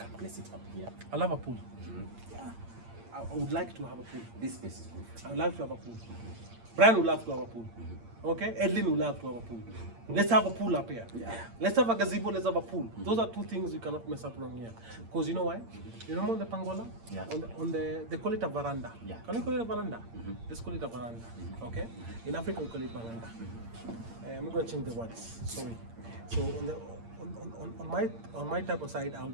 place it up here. I love a pool. Yeah. I would like to have a pool. This space is good. I would like to have a pool. Brian would love to have a pool. Okay? Edlin would love to have a pool. Let's have a pool up here. Yeah. Let's have a gazebo, let's have a pool. Those are two things you cannot mess up wrong here. Because you know why? You remember on the Pangola? Yeah. They call it a veranda. Yeah. Can we call it a veranda? Let's call it a veranda. Okay? In Africa we call it veranda. I'm not going to change the words. Sorry. So on my type of side,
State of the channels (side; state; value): left; late; 8.7 ms